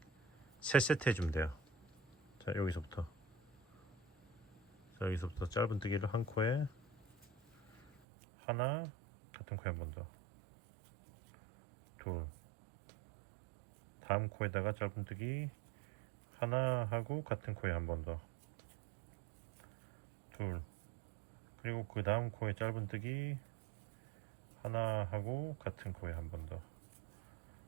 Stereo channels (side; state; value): left; drops out; at 7.9 s